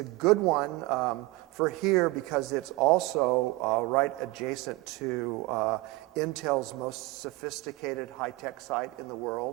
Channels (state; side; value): quieter; left; 21.5 dB